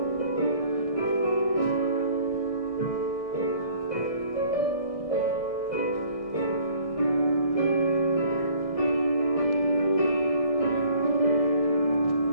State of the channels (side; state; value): right; late; 1.6 ms